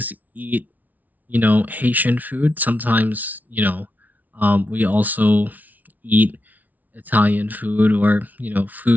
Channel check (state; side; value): late; left; 0.077 ms